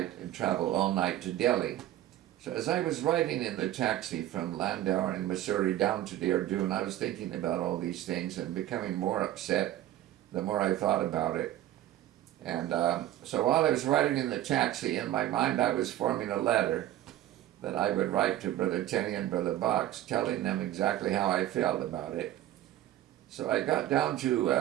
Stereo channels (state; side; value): quieter; left; 13.5 dB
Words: and travel all night to Delhi. So as I was riding in the taxi from Landau in Missouri down to Dehradun, I was thinking about all these things and becoming more upset the more I thought about it. And so while I was riding in the taxi, in my mind I was forming a letter that I would write to Brother Tenney and Brother Box, telling them exactly how I felt about it. So I got down